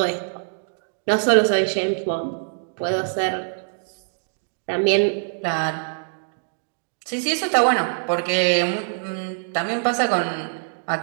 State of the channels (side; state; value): left; silent; digital silence